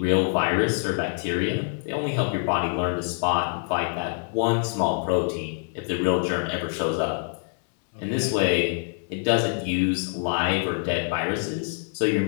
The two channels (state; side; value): silent; right; 59 dB below the other